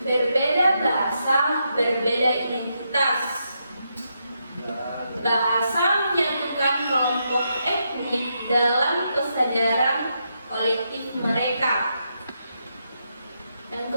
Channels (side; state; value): both; inverted; correlation -0.82